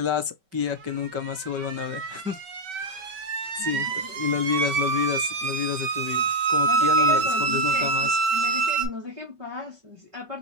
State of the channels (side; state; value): left; late; 5.3 ms